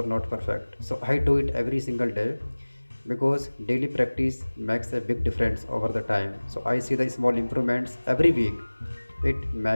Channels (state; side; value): inverted; both; correlation -1.00